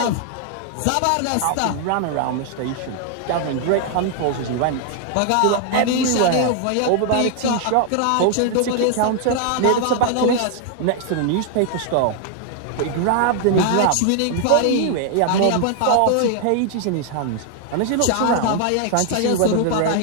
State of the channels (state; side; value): different; both; correlation 0.00